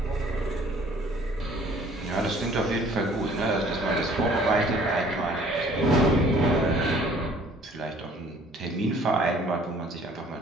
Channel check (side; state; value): both; normal; correlation 0.55